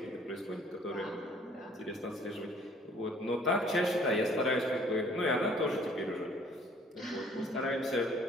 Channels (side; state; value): both; normal; correlation 0.57